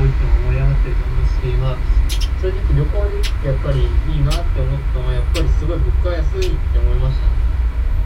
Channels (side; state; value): both; identical; correlation 1.00